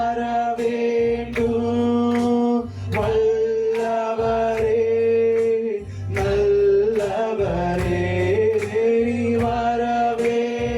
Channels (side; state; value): both; identical; correlation 1.00